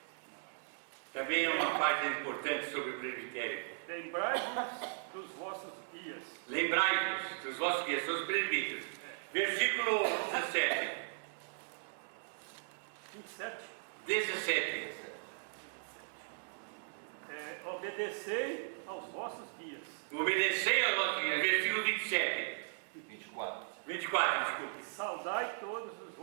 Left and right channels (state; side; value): silent; left; digital silence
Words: Também é uma página importante sobre o presbitério. Lembrai-vos dos vossos guias. Lembrai-vos dos vossos guias, são os presbíteros. Versículo 17. 27. 17. Obedecei aos vossos guias. Obedecei aos vossos guias. Versículo 27. 24, desculpe. Saudai todos os